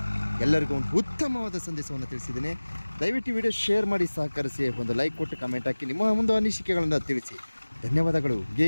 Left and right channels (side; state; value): both; inverted; correlation -1.00